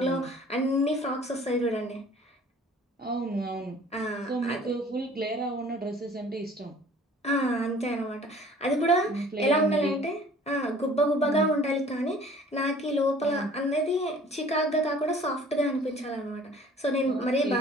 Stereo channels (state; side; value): normal; both; correlation 0.51